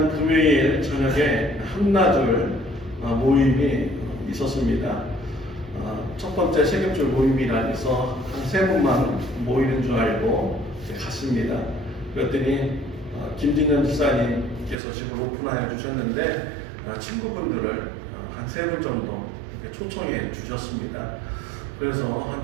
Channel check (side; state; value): left; drops out; at 14.8 s